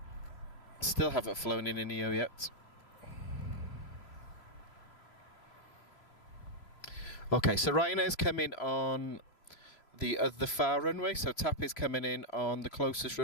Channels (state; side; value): late; right; 3.0 ms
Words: Still haven't flown in a neo yet. Okay, so Ryanair's coming on the far runway. So TAP is coming in on the closest